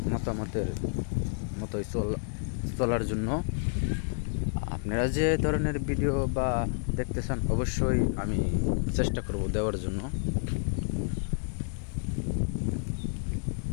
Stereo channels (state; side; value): silent; right; 58 dB below the other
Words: মতামতের মতোই চলার জন্য। আপনারা যে ধরনের ভিডিও বা দেখতে চান অবশ্যই আমি চেষ্টা করব দেওয়ার জন্য।